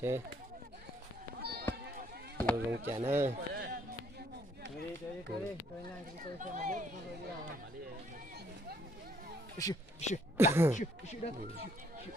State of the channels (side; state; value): both; normal; correlation 0.66